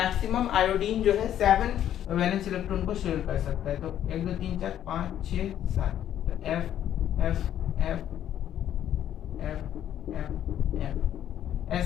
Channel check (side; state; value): right; quieter; 10.9 dB